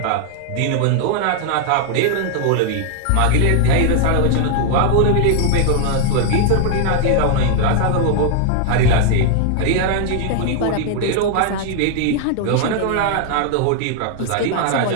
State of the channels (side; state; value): both; different; correlation 0.00